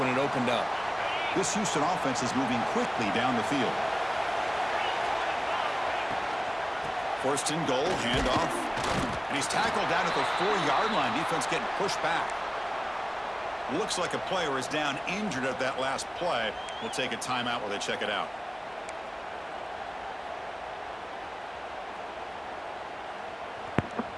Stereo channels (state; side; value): identical; both; correlation 1.00